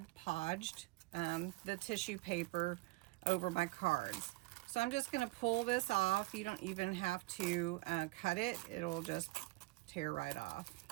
Podged the tissue paper over my cards. So I'm just going to pull this off. You don't even have to cut it. It'll just tear right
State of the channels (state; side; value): quieter; left; 22.1 dB